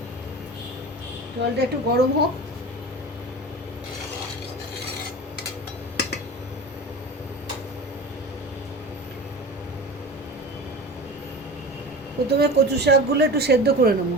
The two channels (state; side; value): normal; both; correlation 0.33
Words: জলটা একটু গরম হোক। প্রথমে কচু শাকগুলো একটু সেদ্ধ করে